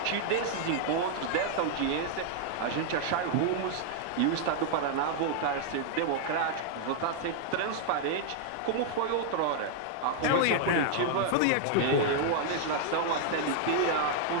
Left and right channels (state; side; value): different; both; correlation 0.00